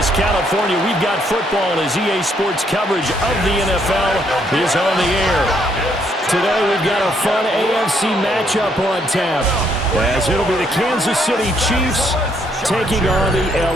California, we've got football as EA Sports coverage of the NFL is on the air. Today we've got a fun AFC matchup on tap, as it'll be the Kansas City Chiefs taking on the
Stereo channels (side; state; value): both; normal; correlation 0.71